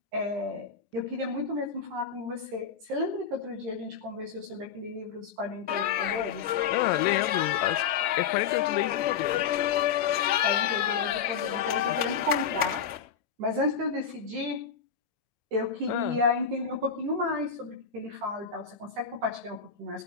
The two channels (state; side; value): quieter; right; 6.9 dB